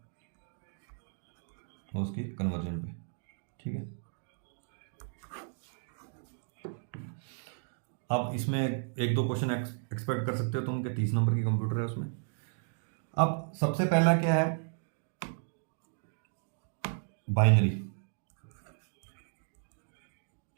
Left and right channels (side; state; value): left; silent; digital silence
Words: और उसकी कन्वर्जन पे, ठीक है। अब इसमें एक दो क्वेश्चन एक्सपेक्ट कर सकते हो तुम कि 30 नंबर की कंप्यूटर है उसमें। अब सबसे पहला क्या है, बाइनरी।